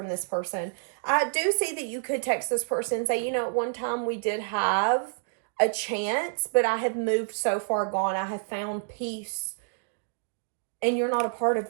this person. I do see that you could text this person and say, you know, at one time we did have a chance, but I have moved so far gone. I have found peace, and you're not a part of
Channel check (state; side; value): silent; left; digital silence